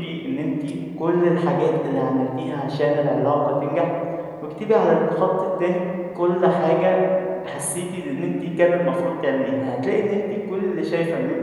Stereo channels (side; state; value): both; identical; correlation 1.00